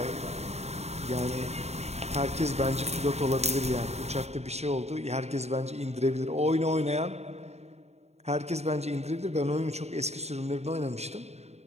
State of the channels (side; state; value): left; late; 0.31 ms